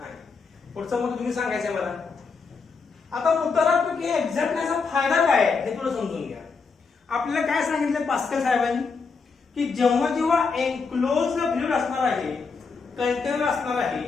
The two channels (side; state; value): right; quieter; 4.9 dB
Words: आहे. पुढचं मग तुम्ही सांगायचंय मला. आता मुद्दा की एक्झॅक्टनेसचा फायदा काय हे थोडं समजून घ्या. आपल्याला काय सांगितलं पास्कल साहेबांनी की जेव्हा एनक्लोज फ्लुइड असणार आहे, कंटेनर असणार आहे,